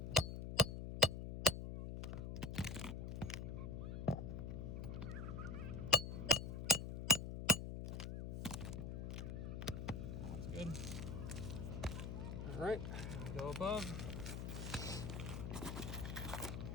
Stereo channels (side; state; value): left; noise; hum, 5 dB below the sound